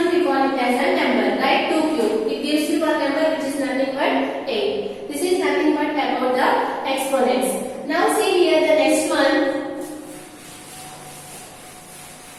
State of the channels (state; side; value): identical; both; correlation 1.00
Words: we call it as a number, right? 2 cube. It gives you a number which is nothing but 8. This is nothing but about the exponents. Now see here the next one.